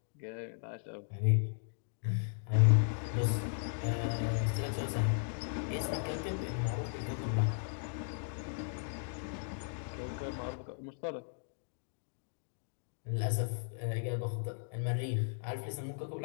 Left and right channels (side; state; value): right; silent; digital silence